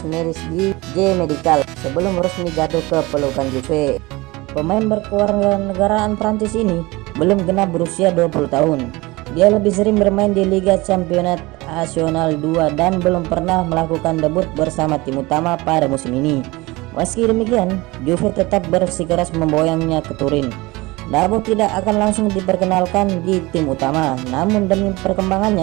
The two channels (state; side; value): quieter; left; 22.1 dB